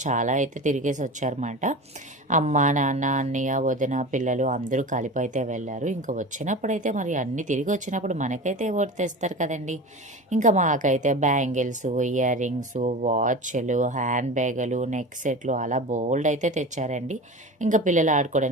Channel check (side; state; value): both; normal; correlation 0.31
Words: చాలా అయితే తిరిగేసి వచ్చారన్నమాట. అమ్మ, నాన్న, అన్నయ్య, వదిన, పిల్లలు అందరూ కలిపి అయితే వెళ్ళారు. ఇంకా వచ్చినప్పుడైతే మరి అన్నీ తిరిగి వచ్చినప్పుడు మనకైతే ఓటు తెస్తారు కదండి. ఇంకా మాకైతే బ్యాంగిల్స్, ఇయర్ రింగ్స్, వాచ్లు, హ్యాండ్ బ్యాగులు, నెక్ సెట్లు అలా బోల్డ్ అయితే తెచ్చారండి. ఇంకా పిల్లలు